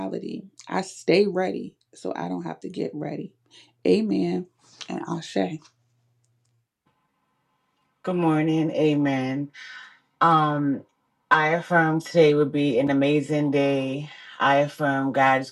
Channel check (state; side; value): identical; both; correlation 1.00